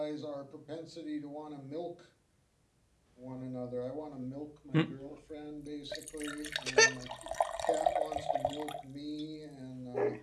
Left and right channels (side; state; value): both; identical; correlation 1.00